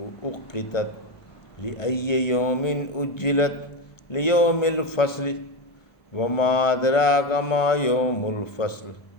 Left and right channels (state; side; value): late; right; 1.2 ms